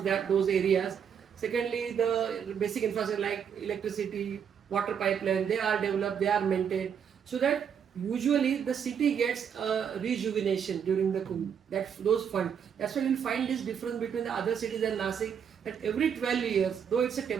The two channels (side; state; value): left; quieter; 7.7 dB